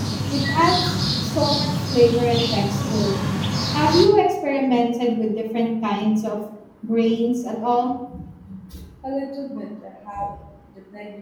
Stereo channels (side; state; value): both; identical; correlation 1.00